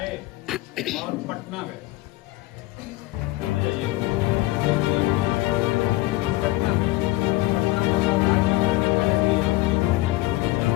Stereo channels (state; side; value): quieter; right; 18.7 dB